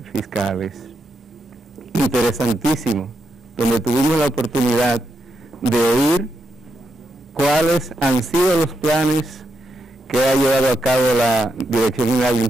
fiscales. Interesantísimo, donde tuvimos la oportunidad de oír cuáles han sido los planes que ha llevado a cabo la Dirección General de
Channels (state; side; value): normal; both; correlation 0.82